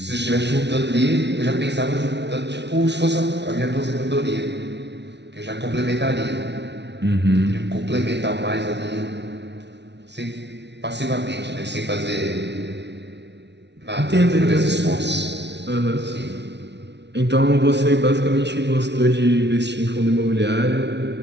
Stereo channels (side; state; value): left; late; 0.50 ms